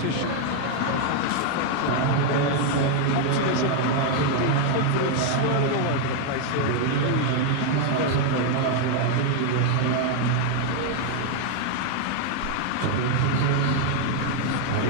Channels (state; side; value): different; both; correlation 0.00